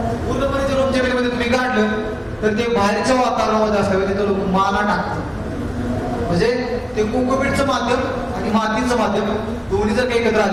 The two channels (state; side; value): identical; both; correlation 1.00